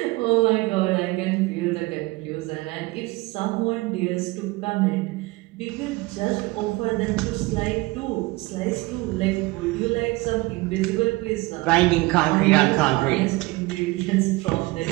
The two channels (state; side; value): quieter; left; 22.2 dB